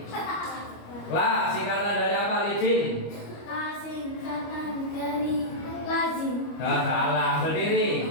La singkatan dari apa? Lidin. La singkatan dari lazim. Nah, salah, berdiri.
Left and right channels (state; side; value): late; right; 25 ms